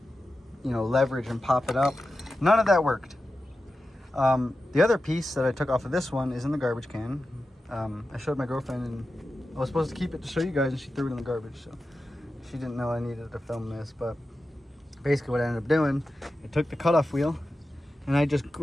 you know, leverage and pop it up. None of that worked. The other piece that I took off of this one is in the garbage can. I showed my girlfriend and I was supposed to keep it to show you guys, and she threw it in the garbage, so she didn't know I needed to film this. But basically what I ended up doing, I took the cutoff wheel and I just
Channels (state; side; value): normal; both; correlation 0.92